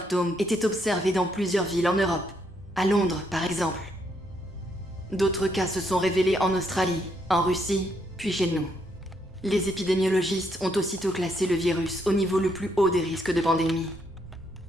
étaient observés dans plusieurs villes en Europe, à Londres par exemple. D'autres cas se sont révélés en Australie, en Russie, puis chez nous. Les épidémiologistes ont aussitôt classé le virus au niveau le plus haut des risques de pandémie.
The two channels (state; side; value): normal; both; correlation 0.74